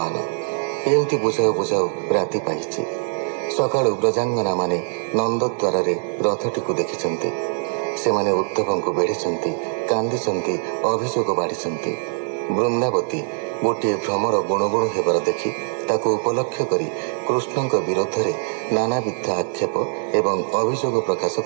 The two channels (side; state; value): left; silent; digital silence